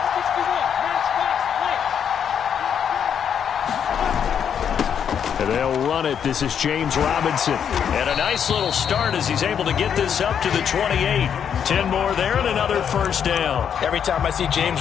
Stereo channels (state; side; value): quieter; right; 8.1 dB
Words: And they'll run it. This is James Robinson. And a nice little start as he's able to get this up to the 28. 10 more there and another first down. Every time I see